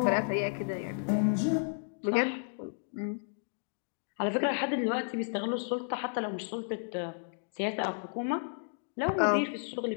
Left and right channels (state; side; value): silent; right; digital silence